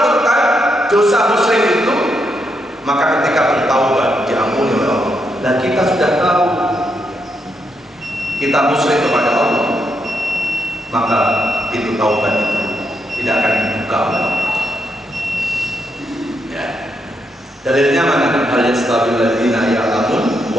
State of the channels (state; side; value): normal; both; correlation 0.80